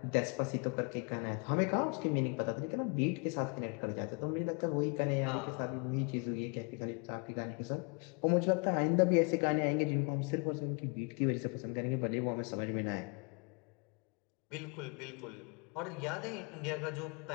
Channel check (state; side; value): quieter; right; 34.6 dB